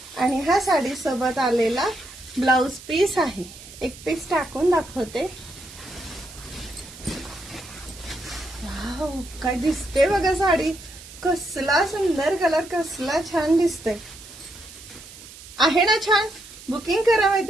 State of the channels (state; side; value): noise; right; hiss, 17 dB below the sound